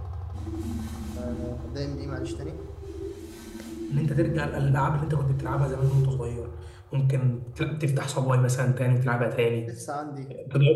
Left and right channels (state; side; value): identical; both; correlation 1.00